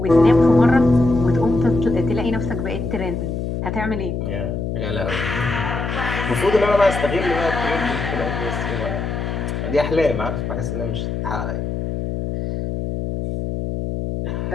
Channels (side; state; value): left; noise; hum, 3 dB below the sound